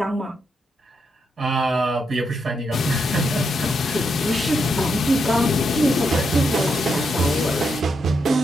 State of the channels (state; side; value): normal; both; correlation 0.81